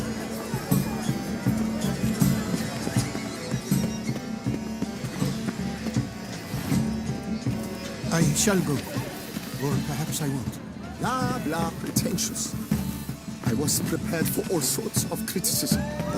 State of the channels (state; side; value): identical; both; correlation 1.00